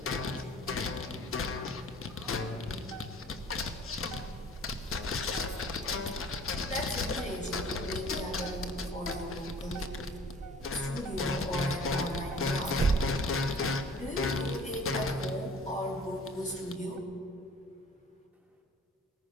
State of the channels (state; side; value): normal; both; correlation 0.49